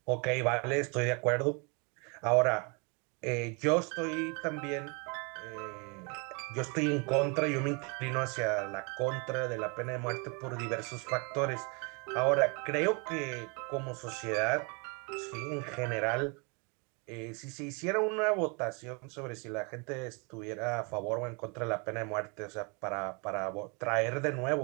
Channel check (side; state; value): left; quieter; 32.7 dB